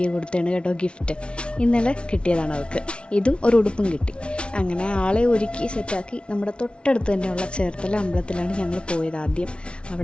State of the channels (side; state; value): right; late; 0.058 ms